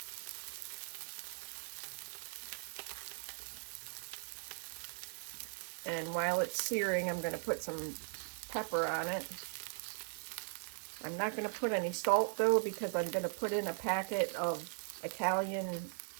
And while it's searing, I'm going to put some pepper on it. I'm not going to put any salt though, because I'm going to put in a packet of Italian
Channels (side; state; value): left; silent; 52 dB below the other